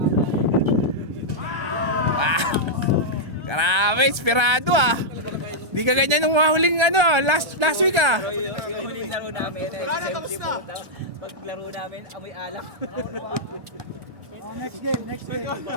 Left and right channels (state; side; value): late; left; 1.3 ms